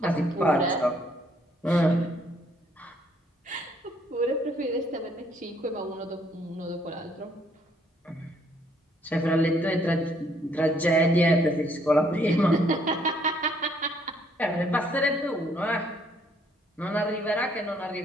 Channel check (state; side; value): normal; both; correlation 0.67